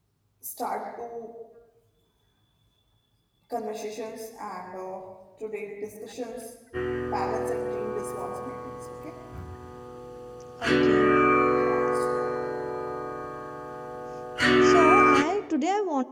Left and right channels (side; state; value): both; identical; correlation 1.00